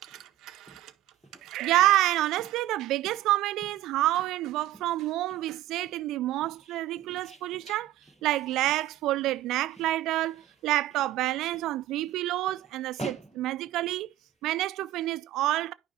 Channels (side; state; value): left; quieter; 14.4 dB